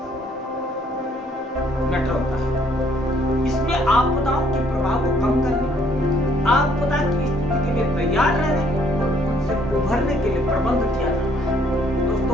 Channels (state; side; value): normal; both; correlation 0.64